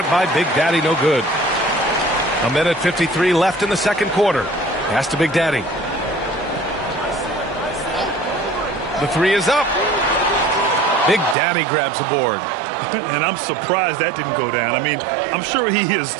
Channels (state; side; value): drops out; left; at 11.4 s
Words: by Big Daddy, no good. 1:53 left in the second quarter. Pass to Big Daddy. The three is up. Big Daddy grabs the board. And I'm surprised that didn't go down. I mean, I'm sure he is